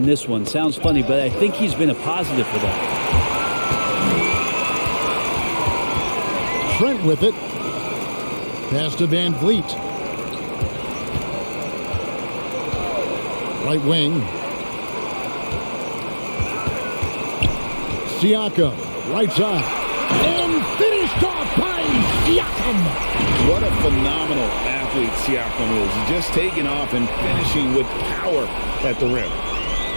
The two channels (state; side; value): inverted; both; correlation -1.00